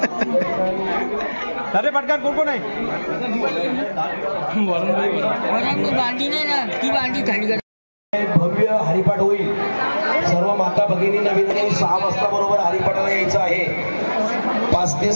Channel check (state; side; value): inverted; both; correlation -1.00